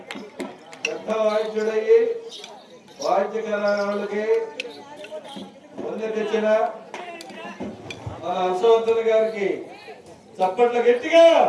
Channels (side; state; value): both; identical; correlation 1.00